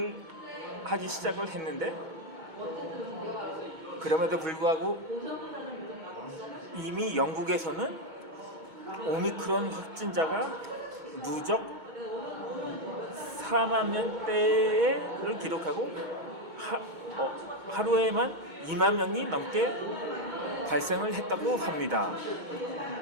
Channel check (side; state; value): left; late; 2.2 ms